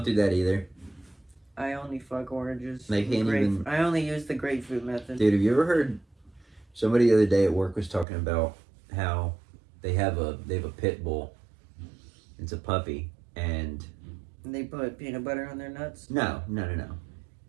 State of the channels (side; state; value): left; drops out; at 8.1 s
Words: do that either. I only fuck oranges. They can't even... I only use the grapefruit method. Dude, have you ever heard... Somebody the other day at work was talking about how they have a pit bull. It's a puppy, and... They put peanut butter on their nuts? No.